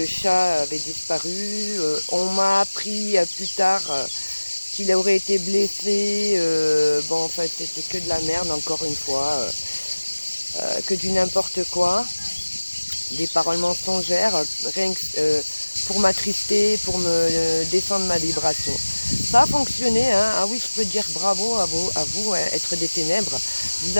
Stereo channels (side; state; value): both; inverted; correlation -1.00